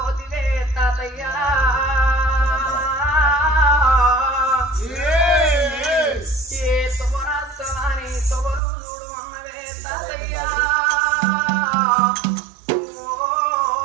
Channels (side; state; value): left; drops out; at 8.6 s